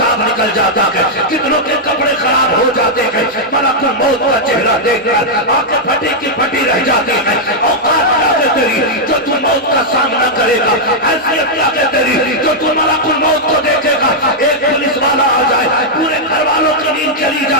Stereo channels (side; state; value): both; normal; correlation -0.05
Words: نکل جاتا ہے، کتنوں کے کپڑے خراب ہو جاتے ہیں، ملک الموت کا چہرہ دیکھ کر آنکھیں پھٹی کی پھٹی رہ جاتی ہیں۔ اوقات کیا کہ تیری جو تو موت کا سامنا کرے گا، حیثیت کیا کہ تیری جو تو ملک الموت کو دیکھے گا۔ ایک پولیس والا آ جائے پورے گھر والوں کی نیند چلی